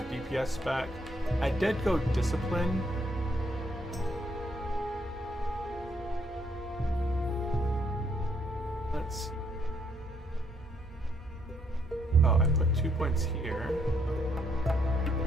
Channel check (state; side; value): normal; both; correlation 0.72